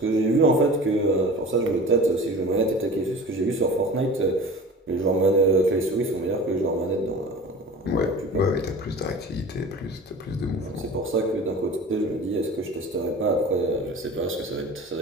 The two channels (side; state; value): both; normal; correlation 0.39